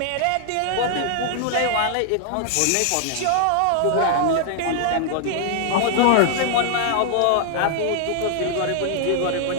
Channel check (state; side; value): different; both; correlation -0.01